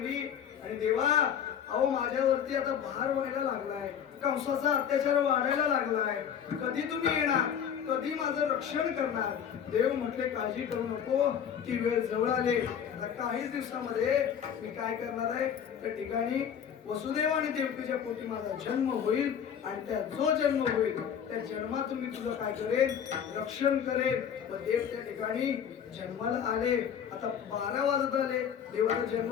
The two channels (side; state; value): right; quieter; 8.4 dB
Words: आणि देवा अहो माझ्यावरती आता भार व्हायला लागलाय, कंसाचा अत्याचार वाढायला लागलाय, कधी तुम्ही येणार, कधी माझं रक्षण करणार? देव म्हटले काळजी करू नको, ती वेळ जवळ आली. काहीच दिवसामध्ये मी काय करणार आहे, त्या ठिकाणी वसुदेव आणि देवकीच्या पोटी माझा जन्म होईल. आणि त्या जो जन्म होईल त्या जन्मातून मी तुझं काय करेन? रक्षण करेन. व देव त्या ठिकाणी जन्माला आले. आता 12 वाजत आले. देवाचा जन्म